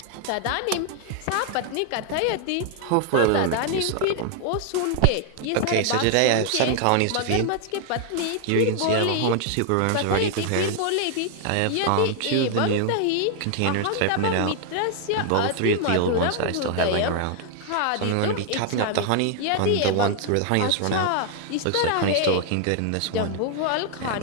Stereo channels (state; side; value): different; both; correlation 0.00